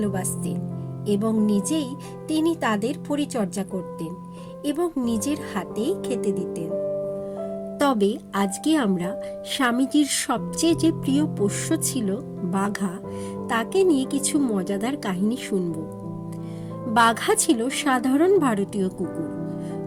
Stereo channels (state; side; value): identical; both; correlation 1.00